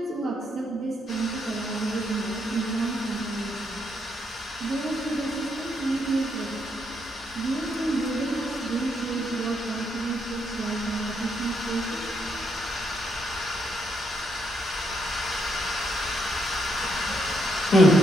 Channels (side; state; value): both; normal; correlation 0.76